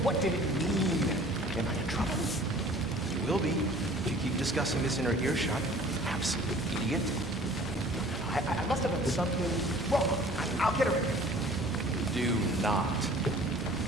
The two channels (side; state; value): both; normal; correlation 0.49